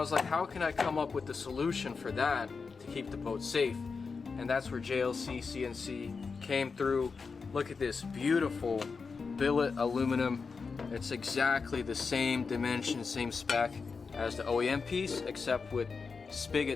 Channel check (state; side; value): quieter; right; 4.9 dB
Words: like, how can I come up with the solution for that to keep the boat safe? And that's where JLC CNC came through. Look at this beautiful billet aluminum. It's exactly the same dimension, same spec as the OEM piece, except with